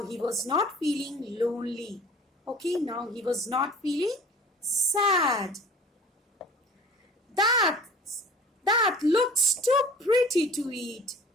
he was not feeling lonely. Okay, now he was not feeling sad. That looks too pretty to eat,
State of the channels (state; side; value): normal; both; correlation 0.44